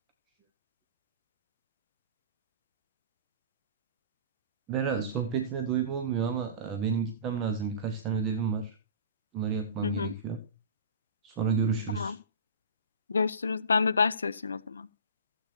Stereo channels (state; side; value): inverted; both; correlation -0.36